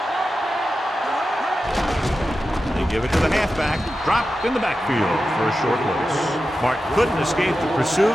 They give it to the halfback. Dropped in the backfield for a short loss. Martin couldn't escape the pursuit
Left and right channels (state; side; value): normal; both; correlation 0.92